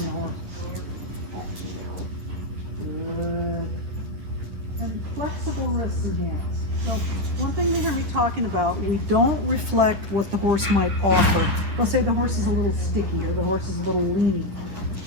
the horse. Good. And flexible wrists and hands. So one thing you hear me talking about, we don't reflect what the horse might offer. They'll say the horse is a little sticky or the horse is a little lean.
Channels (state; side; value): late; left; 10 ms